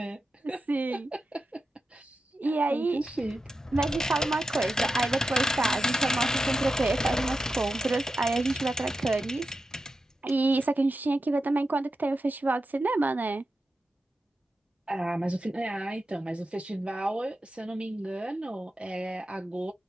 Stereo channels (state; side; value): normal; both; correlation 0.90